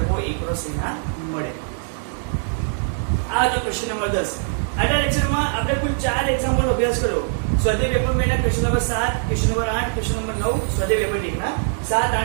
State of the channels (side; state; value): left; silent; digital silence